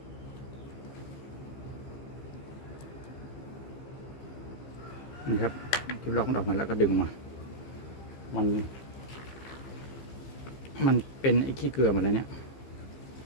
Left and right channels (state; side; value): late; right; 15 ms